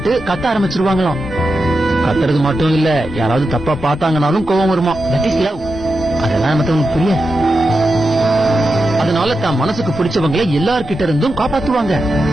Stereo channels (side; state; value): both; normal; correlation 0.89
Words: கத்த ஆரம்பிச்சிருவாங்களாம். கத்துறது மட்டும் இல்ல, யாராவது தப்பா பார்த்தாங்கனாலும் கோவம் வருமா. That is love. அதெல்லாம் மத்தவங்களுக்கு புரியாது. அதனால தான் மனசுக்கு பிடிச்சவங்களை எல்லார்கிட்ட இருந்தும் காப்பாத்துவாங்க.